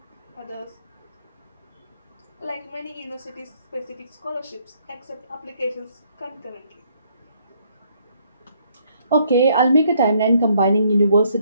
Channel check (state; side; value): inverted; both; correlation -0.68